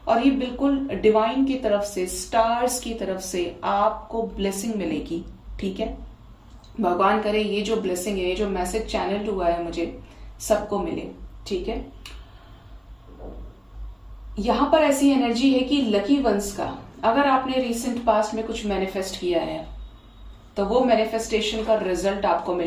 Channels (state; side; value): identical; both; correlation 1.00